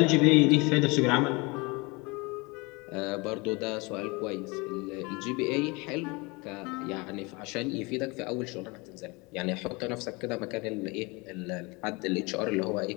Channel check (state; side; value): quieter; right; 26.5 dB